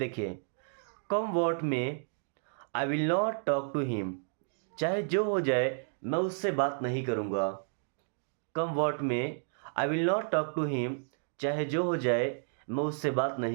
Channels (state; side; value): silent; left; digital silence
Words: come what may I will not talk to him, चाहे जो हो जाए मैं उससे बात नहीं करूँगा। Come what may I will not talk to him, चाहे जो हो जाए मैं उससे बात